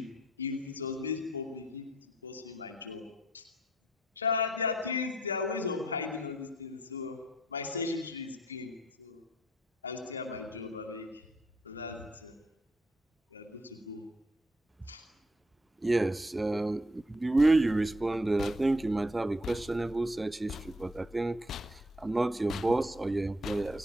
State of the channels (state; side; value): normal; both; correlation 0.68